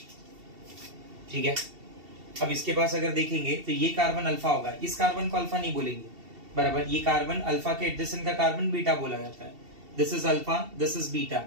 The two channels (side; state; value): left; late; 2.7 ms